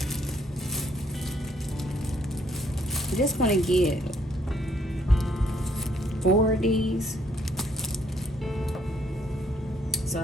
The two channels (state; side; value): normal; both; correlation 0.69